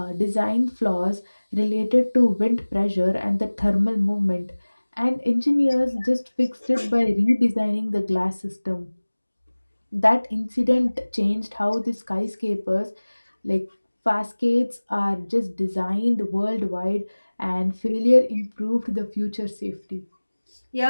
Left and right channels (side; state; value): both; inverted; correlation -1.00